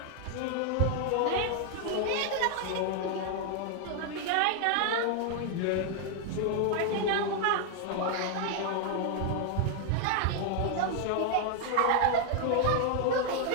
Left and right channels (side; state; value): both; different; correlation 0.00